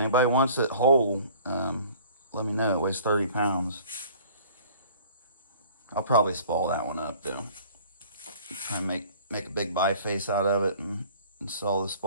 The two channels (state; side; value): inverted; both; correlation -0.50